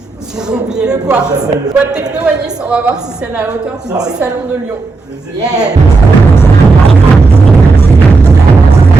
J'ai oublié le quartz. Boîte techno à Nice, on va voir si c'est à la hauteur du petit salon de Lyon. Yeah.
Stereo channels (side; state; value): left; quieter; 3.9 dB